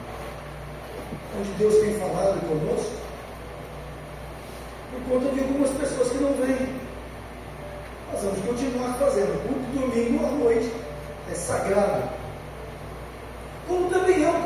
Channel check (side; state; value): both; identical; correlation 1.00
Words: onde Deus tem falado conosco, por conta de algumas pessoas que não vêm. Nós vamos continuar fazendo. O culto de domingo à noite é sagrado. Como também é o